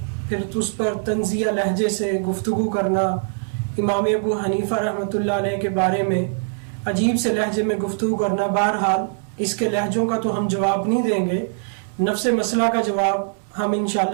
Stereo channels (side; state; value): left; silent; 64 dB below the other